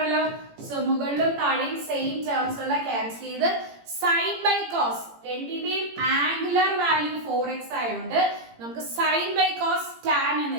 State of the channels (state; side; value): late; left; 17 ms